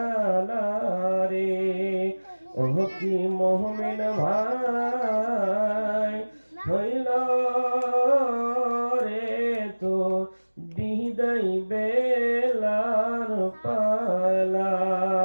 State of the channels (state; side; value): inverted; both; correlation -1.00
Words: রে ওহ কি মুমিন ভাই হইল রে তো বিদায় বেলার